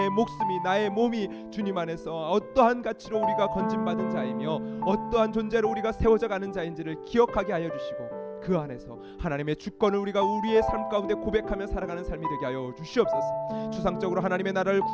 목숨이, 나의 몸이 주님 안에서 어떠한 가치로 우리가 건진받은 자이며 어떠한 존재로 우리가 세워져 가는 자인지를 기억하게 하여 주시고, 그 안에서 하나님의 주권을 우리가 우리의 삶 가운데 고백하며 살아가는 삶이 되게 하여 주시옵소서. 추상적으로 하나님의 나라를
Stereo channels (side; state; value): both; identical; correlation 1.00